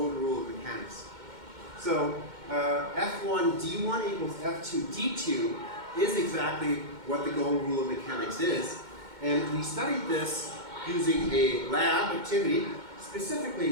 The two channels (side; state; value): left; late; 2.1 ms